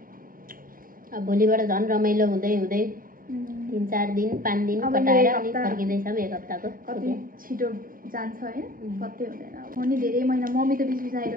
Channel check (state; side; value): late; left; 0.41 ms